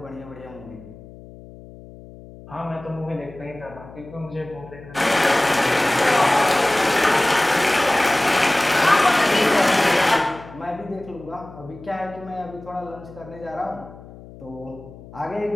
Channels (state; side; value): noise; left; hum, 18 dB below the sound